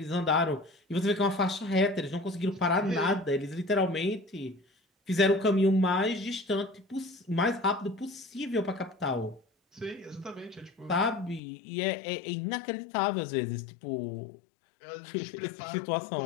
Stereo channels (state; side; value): drops out; right; at 11.4 s